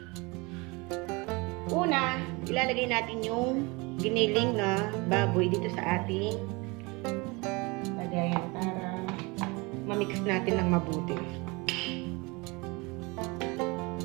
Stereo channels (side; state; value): left; quieter; 26.4 dB